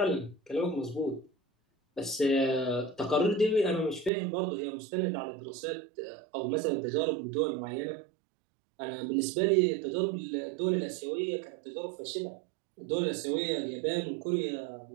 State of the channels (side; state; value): left; drops out; at 4.1 s